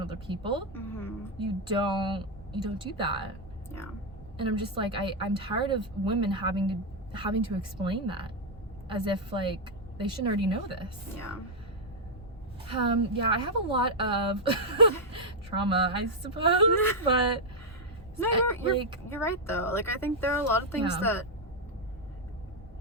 other people. Mm-hmm. You don't do that. Yeah. And I'm just like, I'm tired of women having to explain that as if like they should already know this. Yeah. Yeah, I have a lot of trauma, I suppose, but no, you're right though. Like I think there are a lot of things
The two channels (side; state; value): both; normal; correlation 0.00